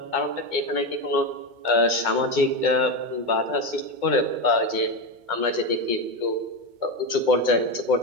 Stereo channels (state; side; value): late; left; 2.2 ms